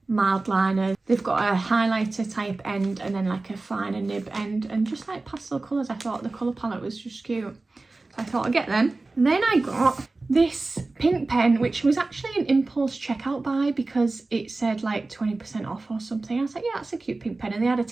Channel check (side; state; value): left; quieter; 3.3 dB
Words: mild liners. They've got a highlighter type end and then like a finer nib end, and just like pastel colours. I thought the colour palette was just cute, so I thought I'd get them. And then I got this pink pen, which was actually an impulse checkout buy because it said like 20% off or something. I was like, yeah, that's a cute pink pen, and they had a